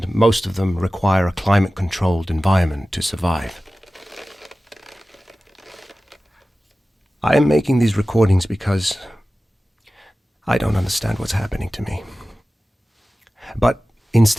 most of them require a climate-controlled environment to survive. I am making these recordings because I don't understand what's happening to me. But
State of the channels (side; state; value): both; normal; correlation 0.96